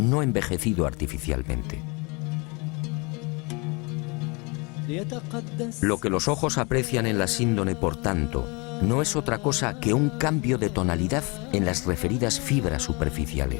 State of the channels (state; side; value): quieter; right; 29.2 dB